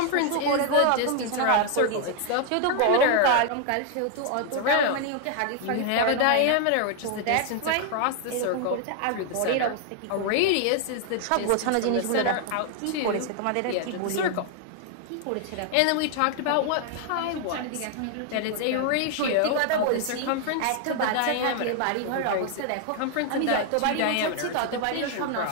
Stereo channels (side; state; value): both; different; correlation 0.00